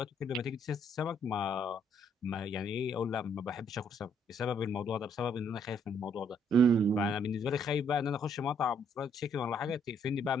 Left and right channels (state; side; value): normal; both; correlation 0.68